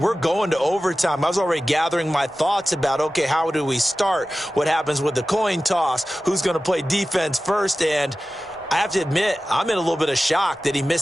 going to overtime. I was already gathering my thoughts about, okay, how do we start? What happens with the coin toss? Who's going to play defense first? And I have to admit, I'm in a little bit of shock that he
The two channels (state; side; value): normal; both; correlation 0.95